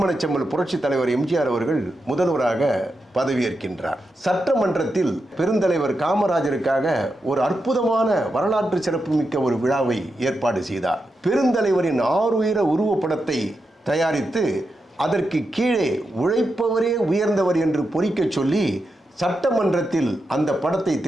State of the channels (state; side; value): normal; both; correlation 0.87